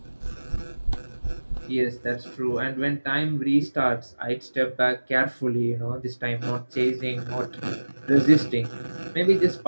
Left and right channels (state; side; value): inverted; both; correlation -1.00